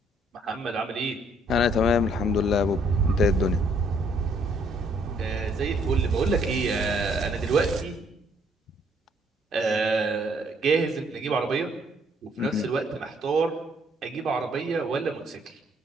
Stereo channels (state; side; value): normal; both; correlation 0.66